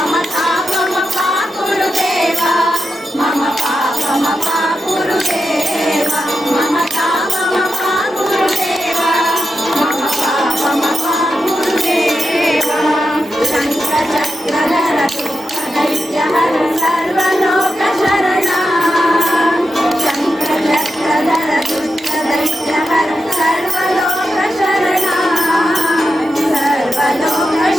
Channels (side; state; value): both; normal; correlation 0.88